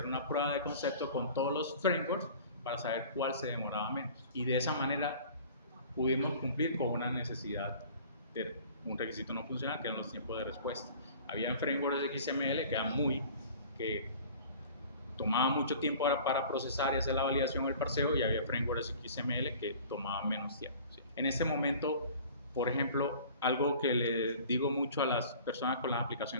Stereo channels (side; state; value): both; inverted; correlation -0.45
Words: una prueba de concepto con todos los frameworks para saber cuál se demoraba menos. Y de esa manera pudimos cumplir con una necesidad de un requisito no funcional, que eran los tiempos de respuesta. Había frameworks de XML que tomaba mucho tiempo para procesar y hacer la validación o el parseo, y había frameworks XML que tomaban menos tiempo, ¿sí? En este momento, por ejemplo, algo que le digo mucho a las personas con las